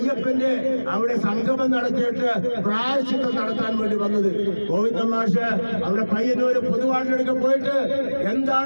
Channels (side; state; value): both; inverted; correlation -1.00